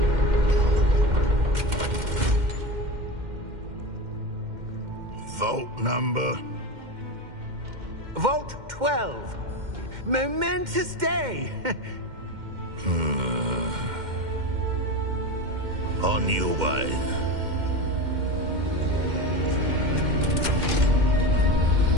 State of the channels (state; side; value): late; left; 2.1 ms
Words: Vault number? Vault 12. Momentous day! On your way.